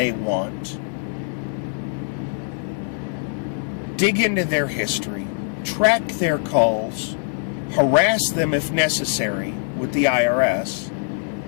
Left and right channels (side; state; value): right; silent; 58 dB below the other